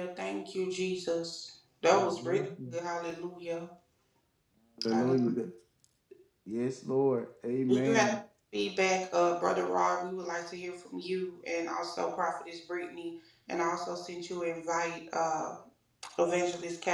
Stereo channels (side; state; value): both; identical; correlation 1.00